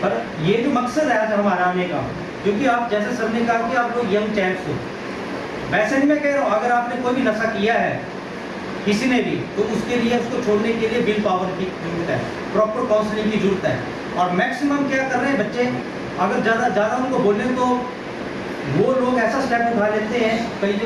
पर ये जो मकसद है आज हमारा आने का, क्योंकि आप जैसे सर ने कहा कि आप लोग यंग चैंप्स हो, वैसे नहीं मैं कह रहा हूँ, अगर आपने कोई भी नशा किया है किसी ने भी, तो उसके लिए उसको छोड़ने के लिए विल पावर की जरूरत है, प्रॉपर काउंसलिंग की जरूरत है। और मैक्सिमम क्या कर रहे हैं बच्चे, अगर ज़्यादा उनको बोलें तो वो लोग ऐसा स्टेप उठा लेते हैं, कई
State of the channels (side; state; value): both; identical; correlation 1.00